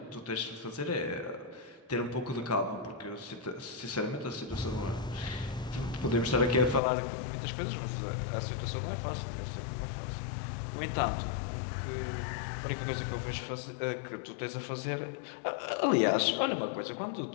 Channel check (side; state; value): right; drops out; at 6.8 s